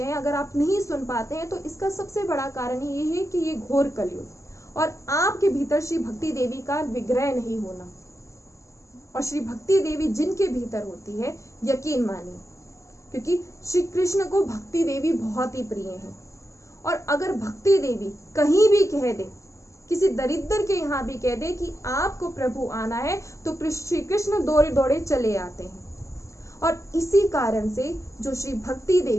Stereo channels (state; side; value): late; right; 0.15 ms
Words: हैं, अगर आप नहीं सुन पाते हैं, तो इसका सबसे बड़ा कारण ये है कि ये घोर कलयुग और आपके भीतर श्री भक्ति देवी का विग्रह नहीं होना। और श्री भक्ति देवी जिनके भीतर होती है, यकीन मानिए, क्योंकि श्री कृष्ण को भक्ति देवी बहुत ही प्रिय है। और अगर भक्ति देवी कहीं भी कह दे, किसी दरिद्र के यहाँ भी कह दे कि आपको प्रभु आना है, तो श्री कृष्ण दौड़े दौड़े चले आते हैं। और इसी कारण से जो श्री भक्ति